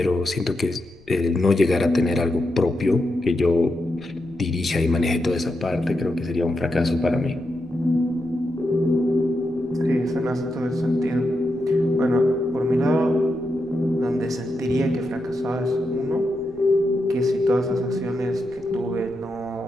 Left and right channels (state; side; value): noise; left; rumble, 26 dB below the sound